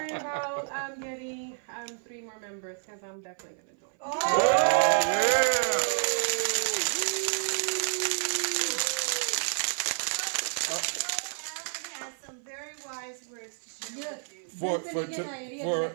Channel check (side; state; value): left; silent; 55 dB below the other